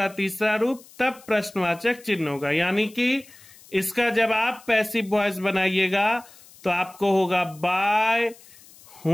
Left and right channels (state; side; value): noise; left; hiss, 23 dB below the sound